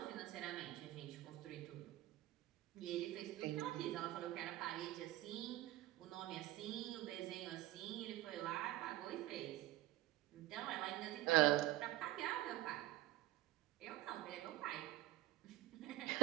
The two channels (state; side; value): quieter; left; 15.7 dB